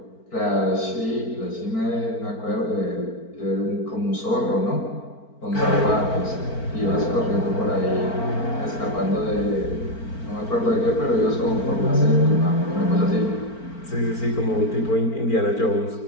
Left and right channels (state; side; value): late; right; 4.4 ms